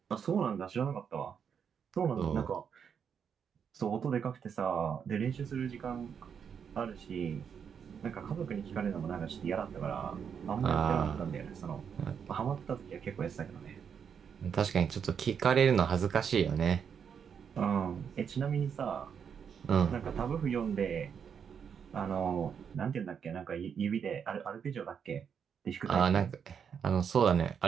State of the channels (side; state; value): left; quieter; 7.3 dB